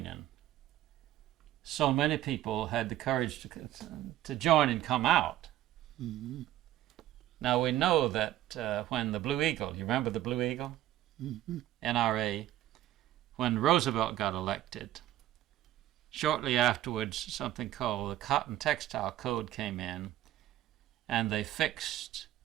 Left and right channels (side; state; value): left; quieter; 13.9 dB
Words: so many people had the courage to join and come out. Mm-hmm. Now we know that when the Blue Eagle, you remember the Blue Eagle? Mm-hmm. NRA, when Roosevelt got elected, shortly afterwards something called the Cotton Textile Code came in, and they